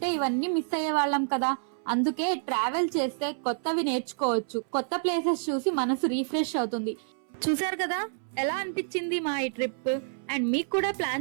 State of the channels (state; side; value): silent; left; 59 dB below the other